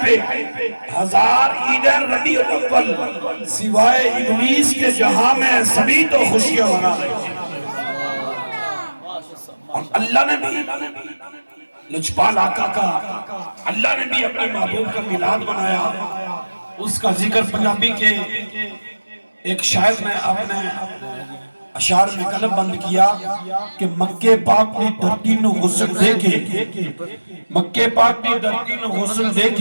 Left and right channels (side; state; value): both; inverted; correlation -1.00